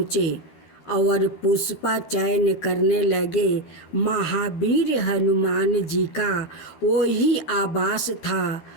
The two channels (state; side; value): late; right; 13 ms